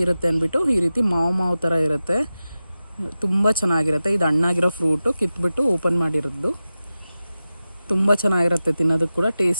ಇರುತ್ತೆ ಅಂದ್ಬಿಟ್ಟು, ಈ ರೀತಿ ಮಾವು ಥರ ಇರುತ್ತೆ, ತುಂಬ ಚೆನ್ನಾಗಿರುತ್ತೆ. ಇದು ಹಣ್ಣಾಗಿರೋ ಫ್ರೂಟು ಕಿತ್ಬಿಟ್ಟು ಓಪನ್ ಮಾಡಿರೋದು. ತುಂಬ ಚೆನ್ನಾಗಿರುತ್ತೆ, ತಿನ್ನೋದಕ್ಕೆ ಕೂಡ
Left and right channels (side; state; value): both; inverted; correlation -0.94